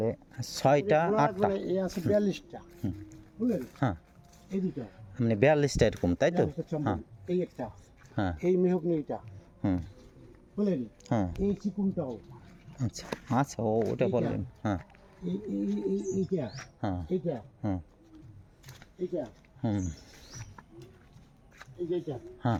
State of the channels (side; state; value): both; identical; correlation 1.00